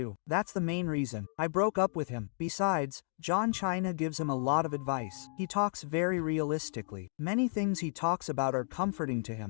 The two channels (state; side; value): silent; right; digital silence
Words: That's the main reason. I broke up with him. Besides, John China gives him a lot of advice. He talks very realistically. Many things he talks about are comforting to